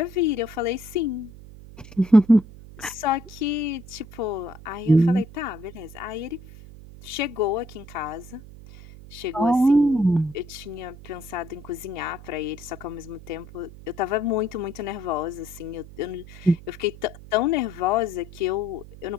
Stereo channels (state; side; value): noise; right; hum, 17 dB below the sound